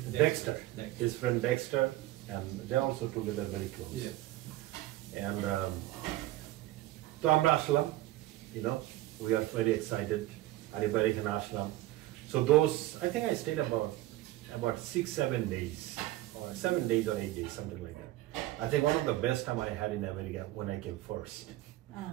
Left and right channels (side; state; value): left; quieter; 16.1 dB